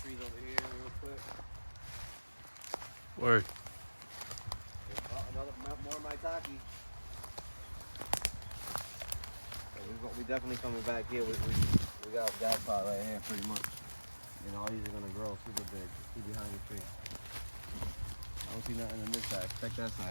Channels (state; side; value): inverted; both; correlation -1.00